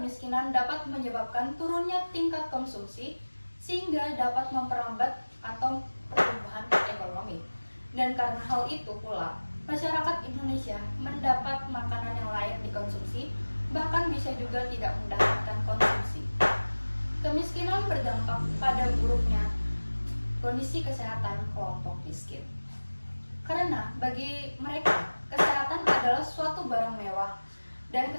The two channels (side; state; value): both; inverted; correlation -1.00